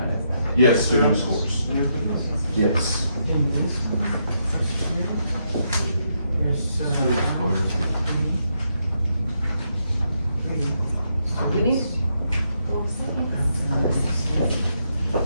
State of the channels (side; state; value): both; inverted; correlation -0.79